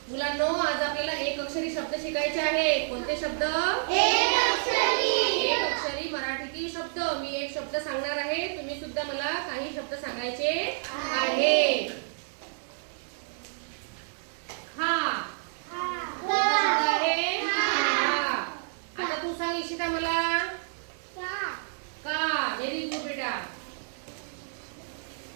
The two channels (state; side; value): silent; left; digital silence